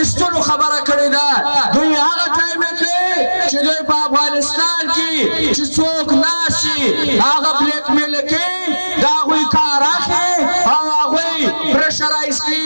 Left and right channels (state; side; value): inverted; both; correlation -1.00